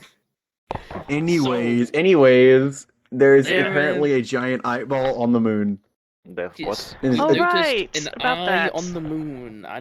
Anyways, there's There apparently a giant eyeball on the moon. That's Yes. And Oh, I noticed right, an about eye that. on the moon,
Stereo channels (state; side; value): identical; both; correlation 1.00